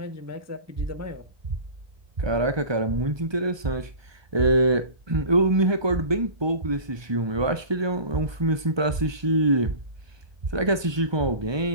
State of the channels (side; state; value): left; late; 1.2 ms